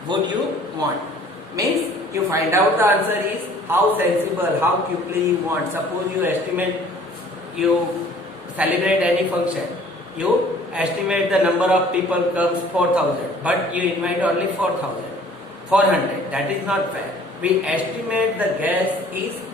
would you want. Means you find out the answer is how sensible, how quickly you want. Suppose you estimate, you celebrate any function, you estimate the number of people comes 4000, but you invite only 400. That is not fair. We estimate the guess is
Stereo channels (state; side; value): normal; both; correlation 0.53